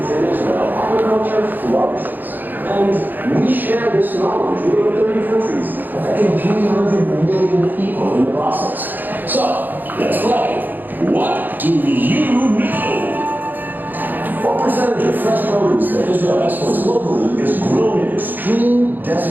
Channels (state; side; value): late; left; 0.087 ms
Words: in Israel, agriculture flourishes. And we share this knowledge with over 30 countries, affecting 300 million people in the process. So, let's play. What do you know? What percentage of fresh produce that Israel exports locally is grown in extreme